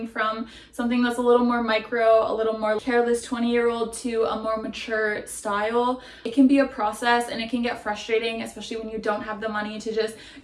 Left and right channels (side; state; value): both; identical; correlation 1.00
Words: from something that's a little more micro, a little more careless 20-year-old to a more mature style, it can be a process and it can get frustrating, especially when you don't have the money to just